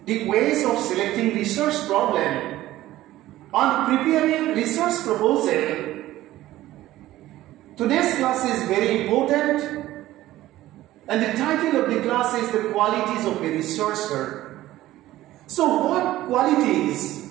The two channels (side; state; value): left; quieter; 15.3 dB